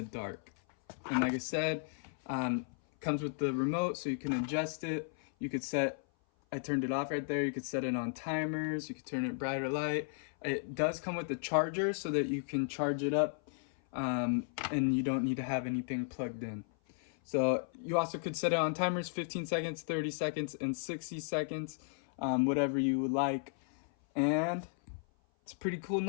dark. And like I said, comes with the remote so you can adjust it. You could set, I turned it off right there. You could set it on timers. You could turn it bright or light. It does come with the charger so that you can charge it up, and you don't need to have anything plugged in. So you also could set it on timers, 15 seconds, 30 seconds, and 60 seconds, whatever you would like. And it's a pretty cool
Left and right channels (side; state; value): right; silent; 55 dB below the other